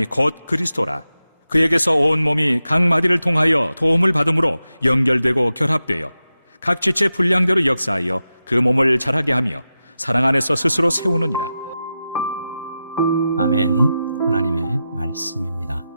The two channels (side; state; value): both; inverted; correlation -0.91